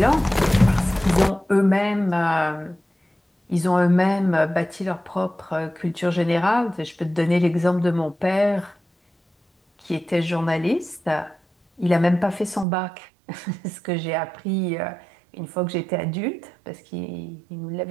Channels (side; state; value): left; drops out; at 12.7 s